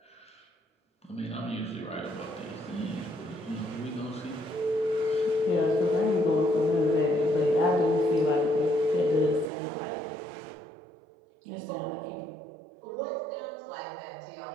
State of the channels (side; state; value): left; drops out; at 9.5 s